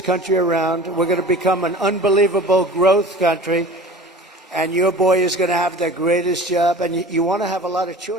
country around. We're going to become an unbelievable growth country. And your boy is going to have the greatest job. And you want to have a lot of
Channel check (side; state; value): both; normal; correlation 0.40